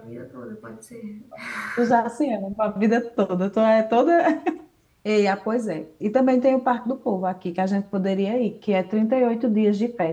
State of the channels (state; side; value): identical; both; correlation 1.00